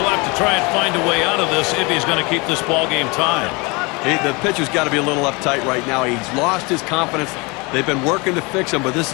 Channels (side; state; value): right; quieter; 27.5 dB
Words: to try and find a way out of this if he's going to keep this ball game tied. The pitcher's got to be a little uptight right now. He's lost his confidence. They've been working to fix him, but this